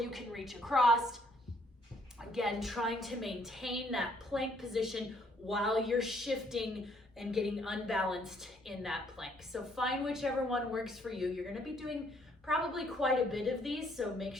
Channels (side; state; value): both; normal; correlation 0.67